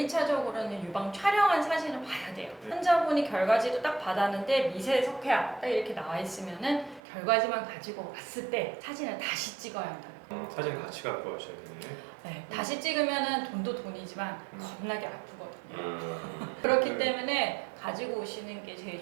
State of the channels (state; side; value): drops out; left; at 7.0 s